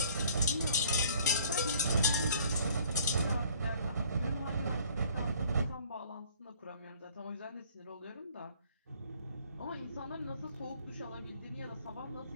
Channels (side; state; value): both; inverted; correlation -0.55